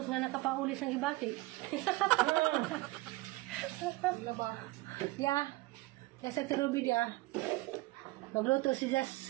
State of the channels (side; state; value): left; quieter; 20.5 dB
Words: nga nakapaulis ng ibati. Laba. Ya. Sa turubi dia. Magluto si